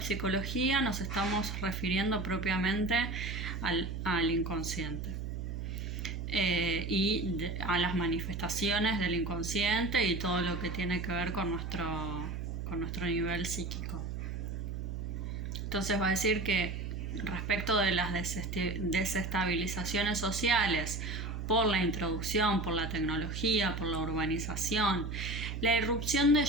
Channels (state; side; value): noise; right; hum, 5 dB below the sound